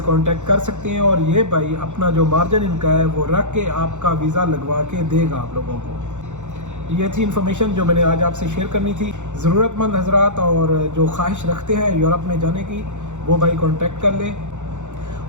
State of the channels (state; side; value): late; left; 0.84 ms